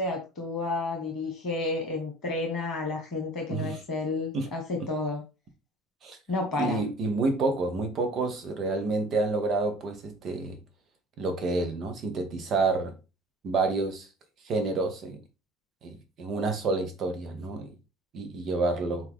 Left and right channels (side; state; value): both; normal; correlation 0.48